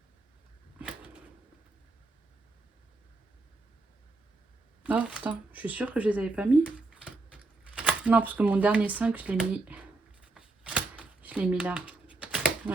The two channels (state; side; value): quieter; left; 3.3 dB